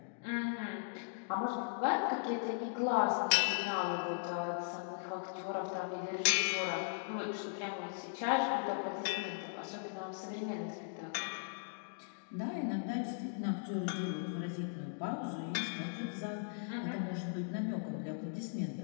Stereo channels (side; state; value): right; silent; digital silence